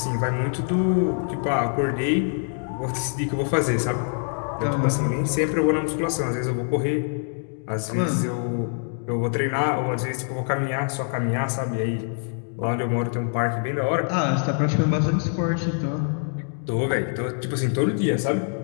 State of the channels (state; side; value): silent; right; 62 dB below the other